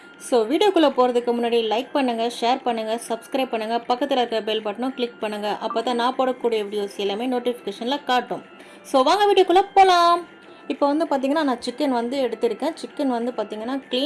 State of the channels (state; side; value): identical; both; correlation 1.00